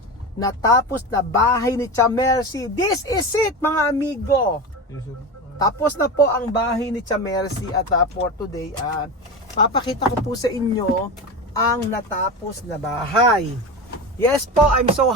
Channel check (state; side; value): normal; both; correlation 0.24